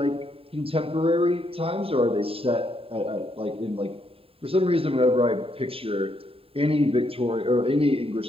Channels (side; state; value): left; late; 0.27 ms